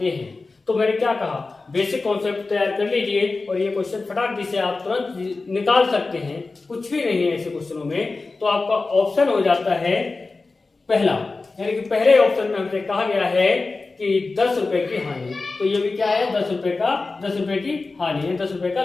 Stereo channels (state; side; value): quieter; right; 3.7 dB